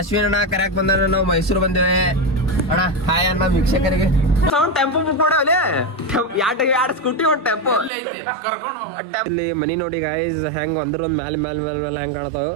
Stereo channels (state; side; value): drops out; left; at 7.9 s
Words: ಅಣ್ಣ ಕರ್ಯಾಕ್ ಬಂದ ನಾವು ಮೈಸೂರು ಬಂದೇವೆ. ಅಣ್ಣ ಹಾಯ್ ಅಣ್ಣ ವೀಕ್ಷಕರಿಗೆ. ಟೆಂಪೋ ಬುಕ್ ಮಾಡವಲೆ ಎರಡು ಸ್ಕೂಟಿ ಒಂದು ಟೆಂಪೋ. ಇಲ್ಲಿ ಮನಿ ನೋಡಿ ಗಾಯ್ಸ್ ಹೆಂಗ್ ಒಂದ್ ಮ್ಯಾಲ ಹೆಂಗ್ ಕಾಣತಾವ.